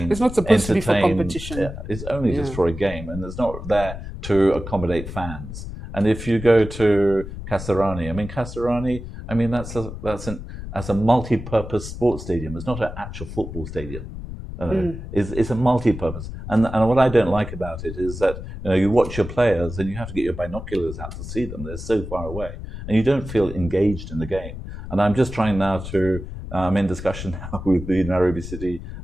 It's not supposed to be for competition. It's only just for a game, and it's not there to accommodate fans. And if you go to Kasarani, that's a multi-purpose sports stadium. It's not an actual football stadium. It's a multi-purpose, and what I don't like about it is that you watch your players and you have to get your binoculars out to see them. They're so far away, and you don't feel engaged in the game. And I'm just trying now to I'm in discussion now with the Nairobi City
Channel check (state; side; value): noise; left; rumble, 10 dB below the sound